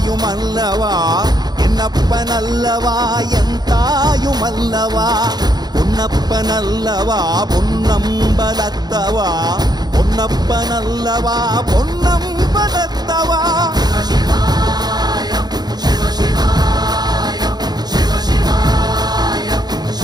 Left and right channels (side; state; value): left; late; 0.20 ms